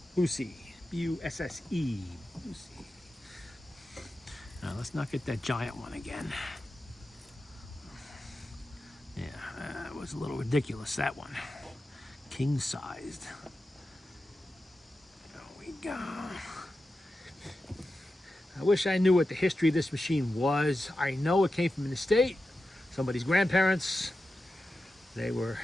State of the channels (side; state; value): both; normal; correlation 0.92